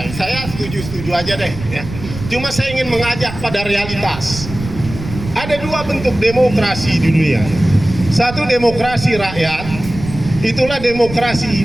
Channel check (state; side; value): noise; right; rumble, 11 dB below the sound